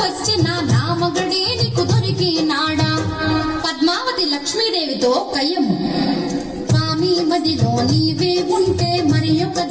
నా మగడే నీకు దొరికినాడా పద్మావతి లక్ష్మీదేవితో కయ్యము స్వామి మదిలో నీవే ఉంటే మరి ఒక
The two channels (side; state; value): both; identical; correlation 1.00